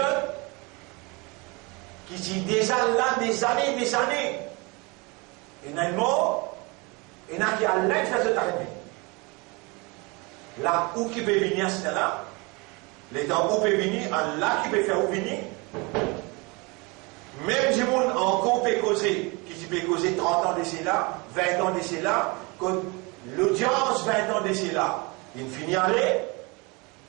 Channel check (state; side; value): quieter; left; 27.6 dB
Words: qui dit déjà là des années, il y a un mot, il y en a qui a l'aide de faire arriver. Là où qui peut venir, c'est là. Les temps où peut venir, là qui peut faire où venir. Même si on encore peut causer, qui peut causer 30 ans d'ici là, 20 ans d'ici là, quand l'audience 20 ans d'ici là, il finit à aller,